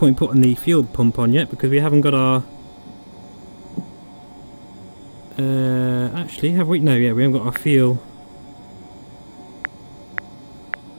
putting the fuel pump on yet because we haven't got our... actually, have we? No, yeah, we haven't got our fuel.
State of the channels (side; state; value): both; inverted; correlation -1.00